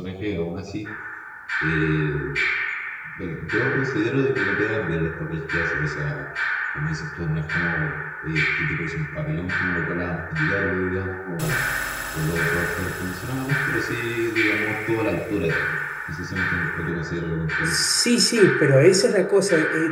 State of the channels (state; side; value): identical; both; correlation 1.00